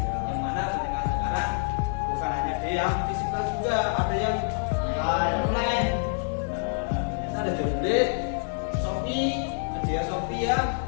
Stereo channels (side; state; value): right; silent; 60 dB below the other